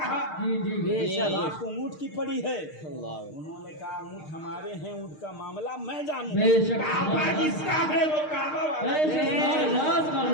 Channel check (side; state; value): right; late; 6.5 ms